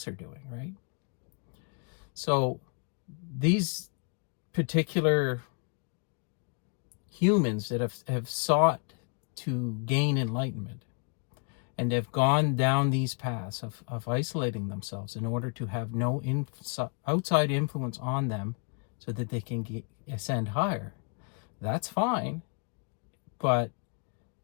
are doing, right? So these particular humans that have sought to gain enlightenment and have gone down these paths of isolating themselves in order to have no outside influence on them so that they can ascend higher, that's fine, but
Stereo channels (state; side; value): quieter; right; 38.7 dB